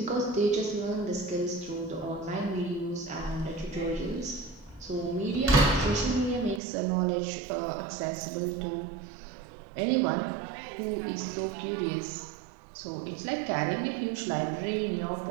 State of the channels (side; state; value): left; drops out; at 6.6 s